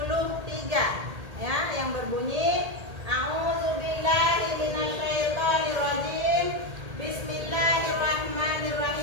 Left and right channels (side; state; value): left; late; 1.8 ms